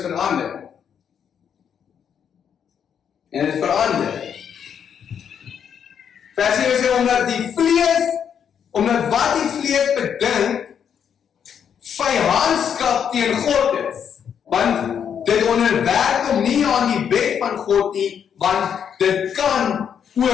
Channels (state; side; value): quieter; right; 8.0 dB